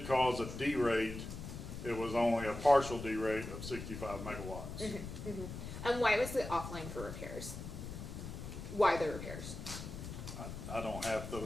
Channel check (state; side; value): noise; left; rumble, 8 dB below the sound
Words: cause a D-rate, it was only a partial D-rate of 65 megawatts. And why was it offline for repairs? Why the repairs? I don't have